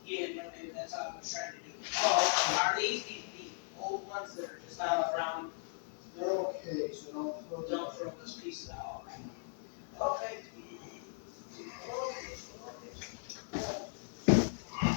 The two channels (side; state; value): right; silent; 53 dB below the other